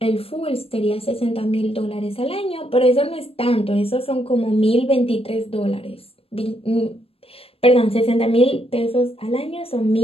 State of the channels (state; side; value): late; right; 0.28 ms